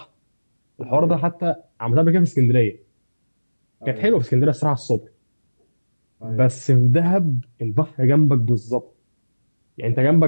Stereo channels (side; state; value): both; inverted; correlation -1.00